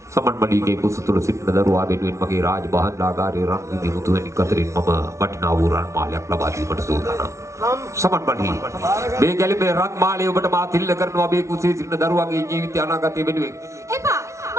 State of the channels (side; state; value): left; late; 0.14 ms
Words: මණිගේ කුස තුල සිටින දරුවා වෙනුවෙන් මගේ රාජබහන්ලාගාරයේ රන් විඳි මුතුවැනි කතරින් මම වටිනා වූ රන් මාලයක් ලබා දීමට සූදානම්. සමන් මණි මේ ගැලපේ රන් මාලය ඔබට මා තිල්ල කරනවා මේ කුසේ සිටින දරුවාගේ ජීවිත අනාගතය වෙනුවෙන්. එපා